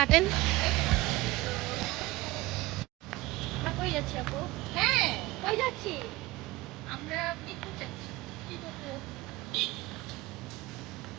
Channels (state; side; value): quieter; left; 19.9 dB